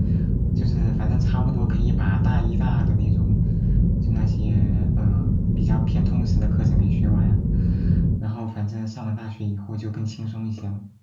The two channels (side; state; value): both; identical; correlation 1.00